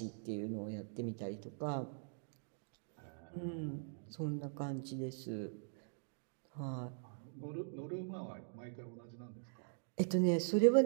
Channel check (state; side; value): silent; left; digital silence